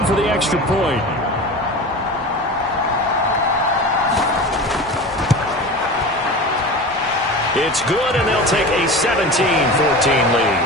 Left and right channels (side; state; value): both; normal; correlation 0.32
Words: for the extra point. It's good, and they'll take a 17-14